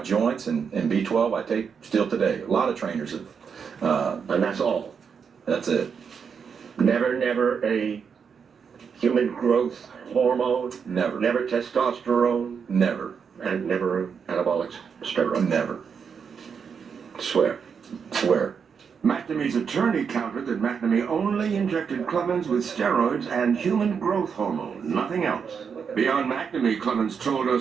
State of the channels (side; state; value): left; quieter; 6.5 dB